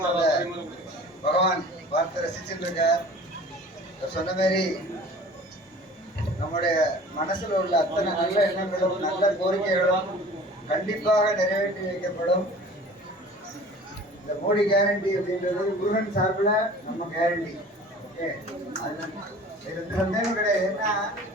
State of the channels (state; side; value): normal; both; correlation 0.45